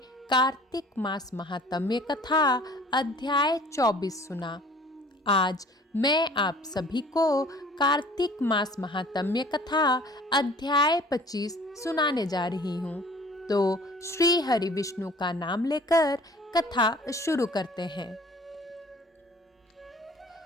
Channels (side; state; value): both; normal; correlation 0.50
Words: कार्तिक मास महात्म्य कथा अध्याय 24 सुना। आज मैं आप सभी को कार्तिक मास महात्म्य कथा अध्याय 25 सुनाने जा रही हूँ। तो श्री हरि विष्णु का नाम लेकर कथा शुरू करते हैं।